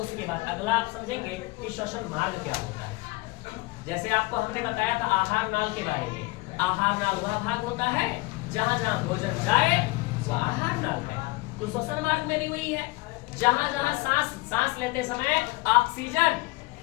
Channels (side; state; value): right; quieter; 22.9 dB